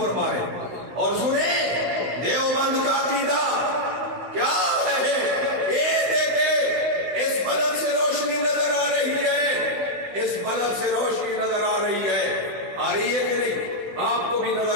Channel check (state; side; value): late; left; 16 ms